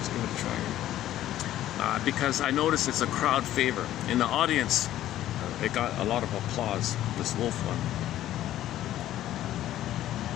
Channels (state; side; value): quieter; right; 13.1 dB